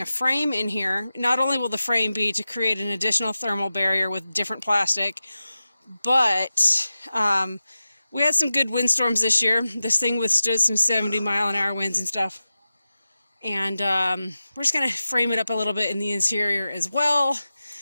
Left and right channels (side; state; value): both; inverted; correlation -0.94